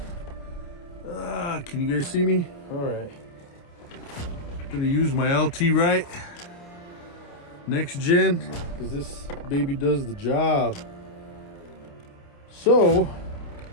Can you guys see me? All right. I'm gonna use my LT right next gen because this baby does the job. So,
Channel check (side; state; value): right; late; 29 ms